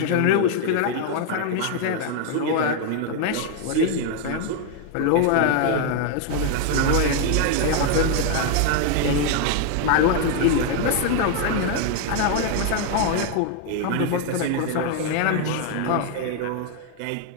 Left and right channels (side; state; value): both; different; correlation 0.00